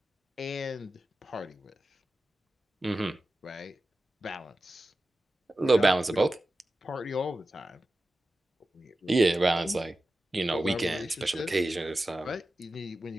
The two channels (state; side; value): normal; both; correlation 0.93